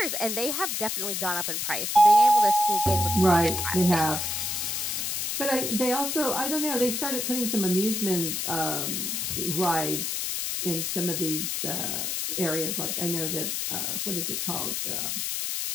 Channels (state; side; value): noise; left; hiss, 1 dB below the sound